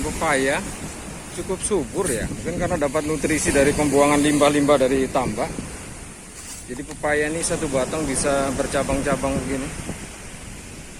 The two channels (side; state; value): both; identical; correlation 1.00